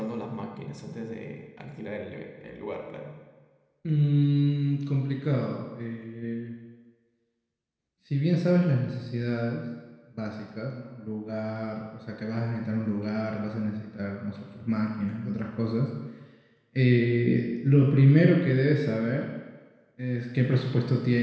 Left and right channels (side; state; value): both; identical; correlation 1.00